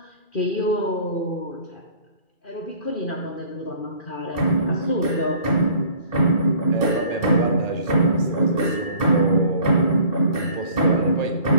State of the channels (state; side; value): late; right; 2.4 ms